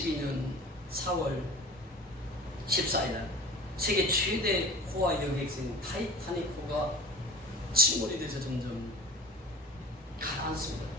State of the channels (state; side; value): normal; both; correlation 0.39